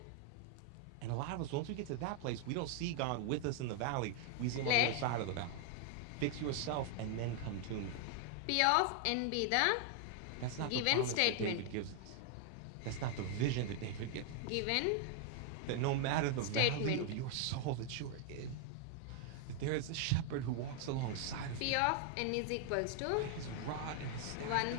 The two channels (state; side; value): different; both; correlation 0.00